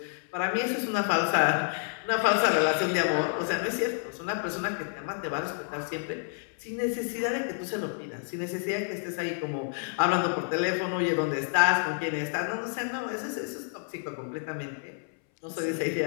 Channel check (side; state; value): right; silent; 58 dB below the other